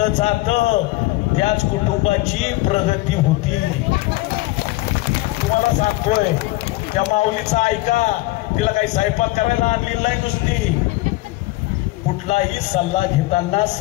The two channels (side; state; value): right; quieter; 19.7 dB